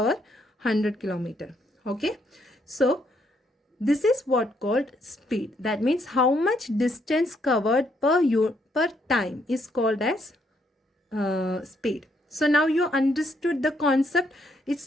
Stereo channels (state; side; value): normal; both; correlation 0.73